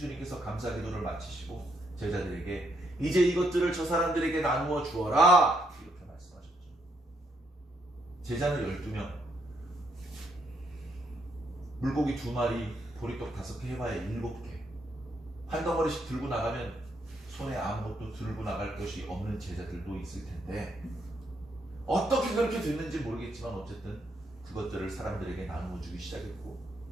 감사 기도를 마치시고 제자들에게 이제 이것들을 저 사람들에게 나누어 주어라 이렇게 말씀하셨죠. 제자는 12명, 물고기 2마리, 보리떡 5개 해봐야 7개. 한 덩어리씩 들고 나가면 손에 아무것도 들고 나갈 것이 없는 제자들도 있을 텐데, 어떻게 그렇게 됐는지 모르겠지만 어쨌든 그것들을 사람들에게 나누어 주기 시작했고,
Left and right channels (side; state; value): both; normal; correlation 0.76